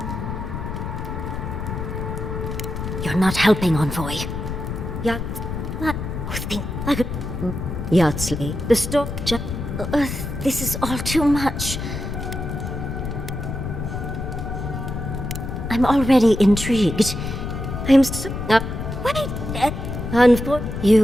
You're not helping, Envoy. Yeah. I could... Yardsley, the store... this is all too much. I'm already intrigued. I'm so... wait! For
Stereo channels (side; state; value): left; noise; rumble, 5 dB below the sound